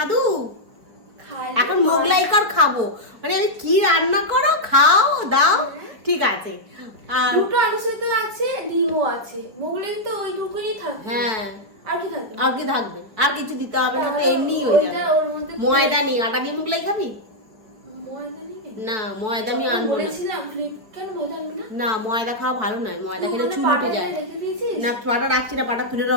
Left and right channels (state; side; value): late; left; 4.8 ms